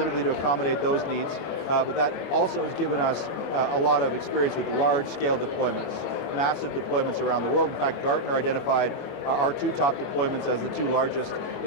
to accommodate those needs, but that also has given us a lot of experience with large-scale deployments, massive deployments around the world. In fact, Gartner identified our two top deployments as the two largest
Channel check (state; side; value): late; right; 24 ms